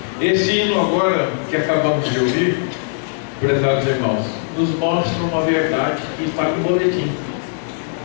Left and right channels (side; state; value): right; silent; digital silence